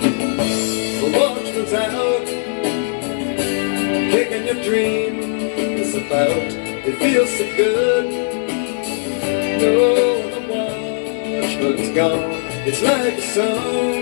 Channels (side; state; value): right; silent; 67 dB below the other